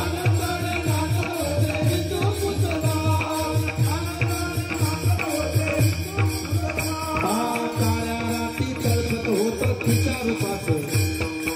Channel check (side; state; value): both; identical; correlation 1.00